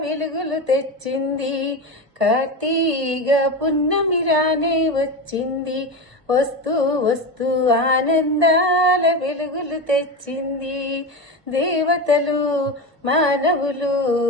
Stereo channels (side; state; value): left; late; 1.7 ms